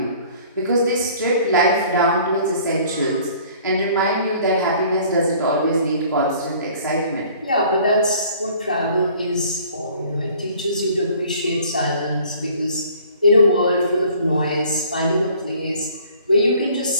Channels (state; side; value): inverted; both; correlation -0.53